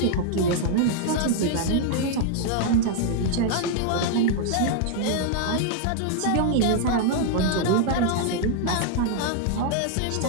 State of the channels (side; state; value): both; different; correlation 0.00